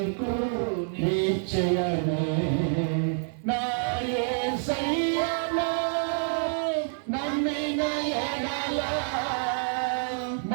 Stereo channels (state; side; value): silent; left; 60 dB below the other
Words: నిశ్చయమే. నా యేసయ్యను నమ్మిన ఎడల